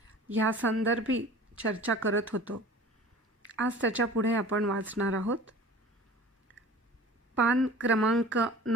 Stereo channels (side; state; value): both; normal; correlation 0.42